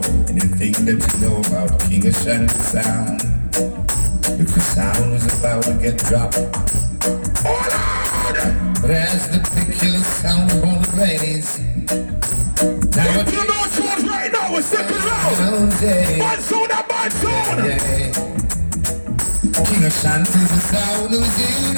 and you think that you know about King Ashanty sound. If the sound is about to get dropped, but as the particular sound on the raise, now if you know what's right now, we're second round. Bad sound and bad sound. King Ashanty's the sound who's here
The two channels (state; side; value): inverted; both; correlation -1.00